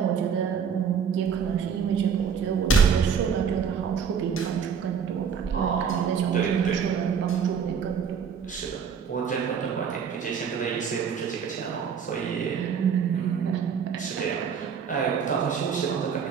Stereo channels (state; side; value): quieter; left; 6.9 dB